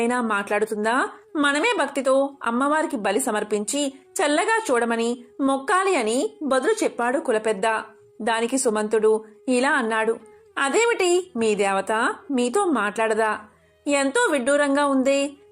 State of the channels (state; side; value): identical; both; correlation 1.00